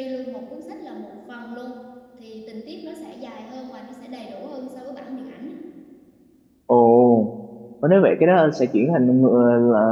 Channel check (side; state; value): both; identical; correlation 1.00